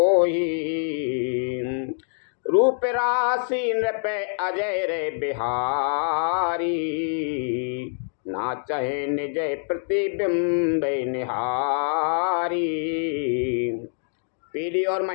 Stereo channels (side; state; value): right; silent; digital silence